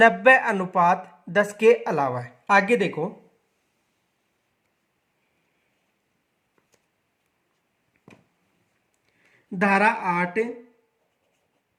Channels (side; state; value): both; identical; correlation 1.00